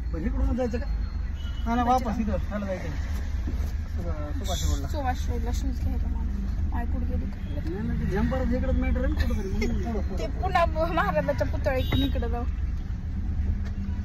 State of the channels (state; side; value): identical; both; correlation 1.00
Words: इकडून जायचं का वापस इथं जायचं सुभाष रोडला शूज घ्यायला मला कुठे गेली जंपर इकडे मॅटर आहे ते पुन्हा महाराजाच्या पुतळा इकडून इकडे जाऊ.